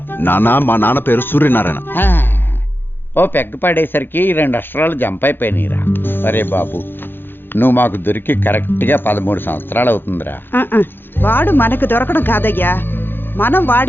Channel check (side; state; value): right; late; 0.10 ms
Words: నాన్న, మా నాన్న పేరు సూర్యనారాయణ. ఓ పెగ్గ పడేసరికి 2 అక్షరాలు జంప్ అయిపోయినాయిరా. అరే బాబు, నువ్వు మాకు దొరికి కరెక్ట్గా 13 సంవత్సరాలు అవుతుందిరా. వాడు మనకు దొరకడం కాదయ్యా, మనం